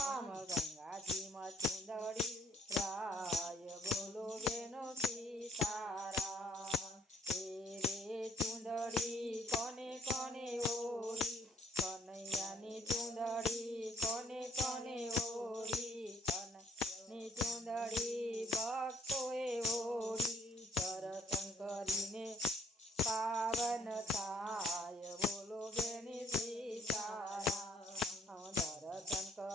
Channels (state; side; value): normal; both; correlation 0.63